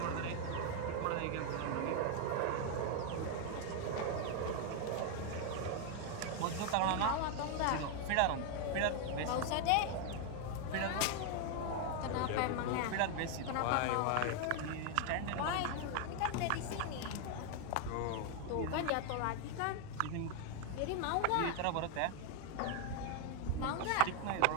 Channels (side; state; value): both; different; correlation 0.01